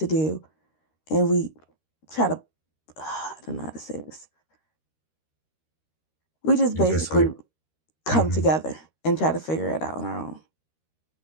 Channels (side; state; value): right; late; 13 ms